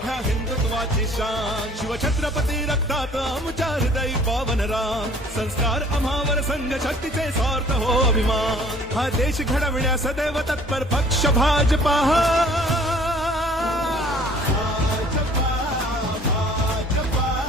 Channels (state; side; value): normal; both; correlation 0.53